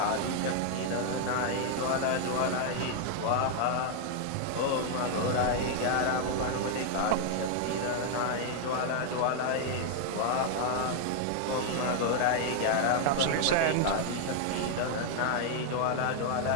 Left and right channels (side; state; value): both; different; correlation 0.00